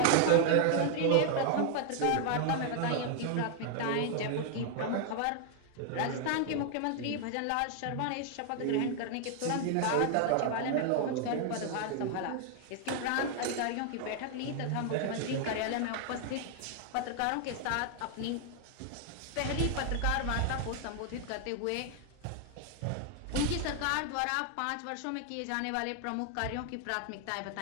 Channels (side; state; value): both; different; correlation 0.00